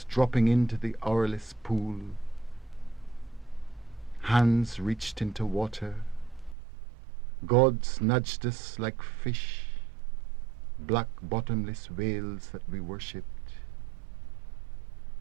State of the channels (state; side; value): drops out; left; at 6.6 s